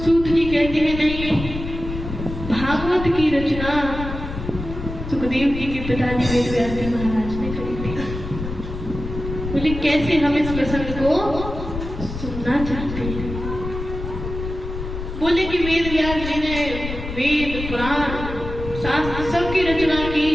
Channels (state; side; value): noise; left; rumble, 7 dB below the sound